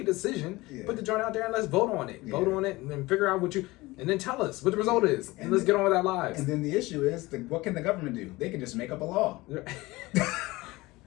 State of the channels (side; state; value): right; quieter; 20.8 dB